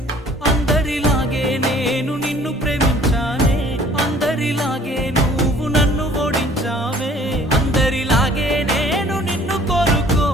అందరిలాగే నేను నిన్ను ప్రేమించానే, అందరిలాగే నువ్వు నన్ను ఓడించావే, అందరిలాగే నేను నిన్ను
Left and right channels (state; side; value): normal; both; correlation 0.54